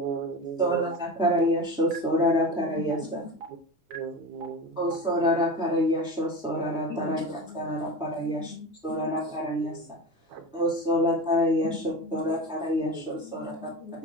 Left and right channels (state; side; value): normal; both; correlation 0.27